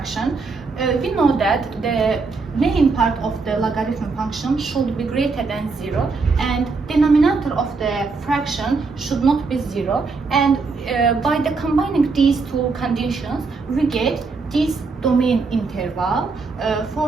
We know that the main part of the logarithm function should be greater than 0 and denominator of the fraction should not be 0, and by the combining these two conditions we get this domain interval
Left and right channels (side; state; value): left; quieter; 4.3 dB